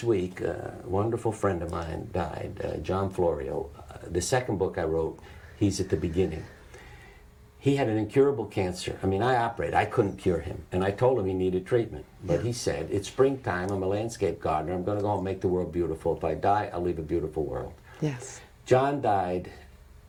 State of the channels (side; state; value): both; identical; correlation 1.00